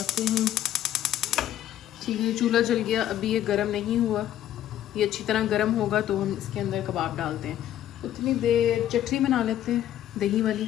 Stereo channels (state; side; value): quieter; right; 11.8 dB